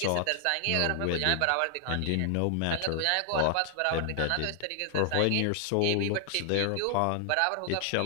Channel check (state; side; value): different; both; correlation 0.00